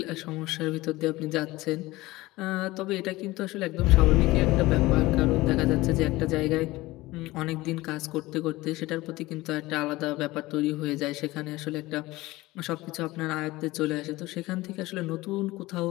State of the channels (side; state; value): right; quieter; 19.3 dB